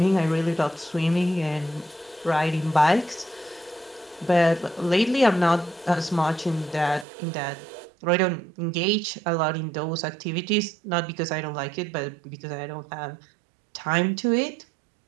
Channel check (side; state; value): left; drops out; at 7.1 s